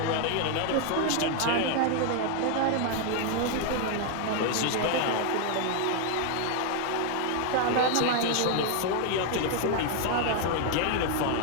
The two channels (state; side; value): different; both; correlation 0.00